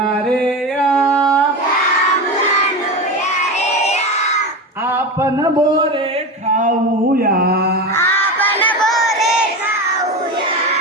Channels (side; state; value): both; normal; correlation 0.22